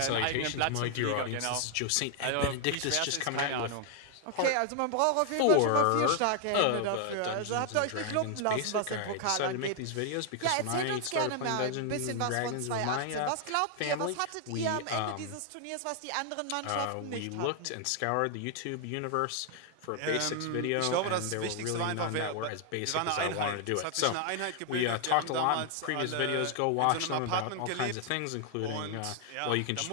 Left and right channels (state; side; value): different; both; correlation 0.00